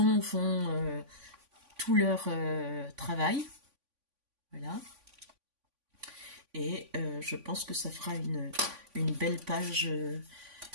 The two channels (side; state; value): left; late; 3.5 ms